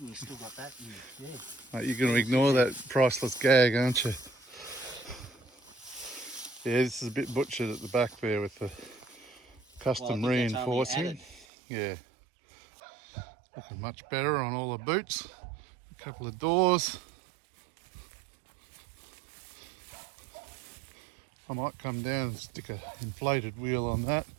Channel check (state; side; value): drops out; left; at 11.5 s